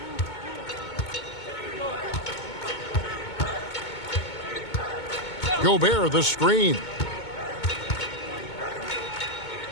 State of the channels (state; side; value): late; right; 2.2 ms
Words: Gobert the screen.